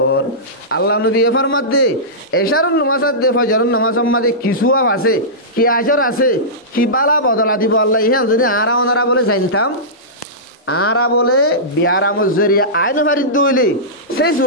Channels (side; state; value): both; normal; correlation -0.16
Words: আল্লাহ নবী ফরমাত দে এশারন নামাজ আদে ফজরন নামাজ মাঝে কিছু আছে কি আজর আছে কি বালা বদলা দিব আল্লাহ ইহান যদি আরা ওনারা বলে জানতাম আরা বলে বিয়ারা মজরিয়া আইন ভারিত দইলে সেই